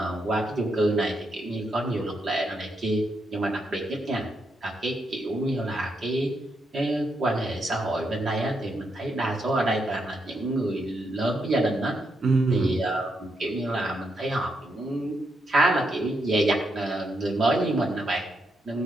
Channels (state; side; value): normal; both; correlation 0.81